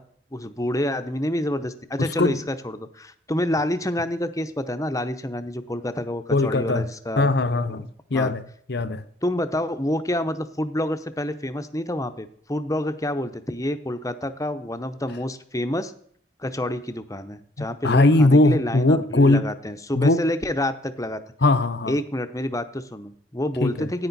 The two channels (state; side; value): normal; both; correlation 0.62